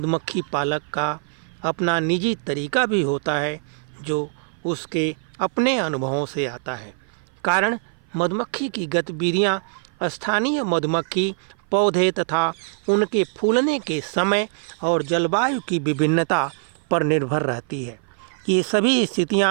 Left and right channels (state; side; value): silent; left; 56 dB below the other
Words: पालक का अपना निजी तरीका भी होता है जो उसके अपने अनुभवों से आता है। कारण मधुमक्खी की गतिविधियाँ स्थानीय मधुमक्खी पौधे तथा उनके फूलने के समय और जलवायु की विभिन्नता पर निर्भर रहती है। ये सभी